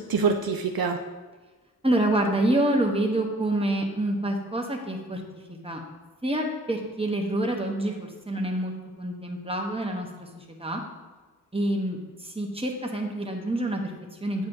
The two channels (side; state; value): both; normal; correlation 0.57